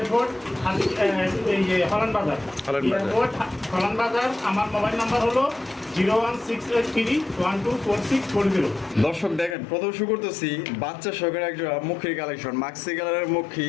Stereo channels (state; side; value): drops out; right; at 9.6 s